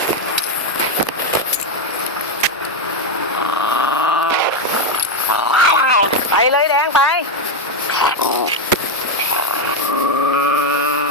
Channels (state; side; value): normal; both; correlation 0.05